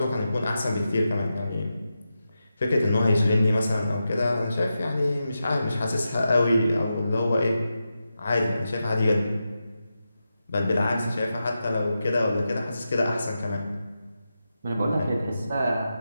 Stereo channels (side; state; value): both; inverted; correlation -0.90